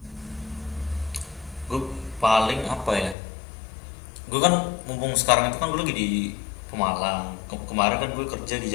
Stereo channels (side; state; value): right; drops out; at 3.2 s